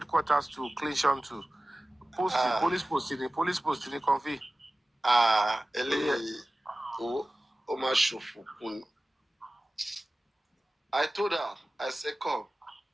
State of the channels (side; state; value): both; normal; correlation 0.97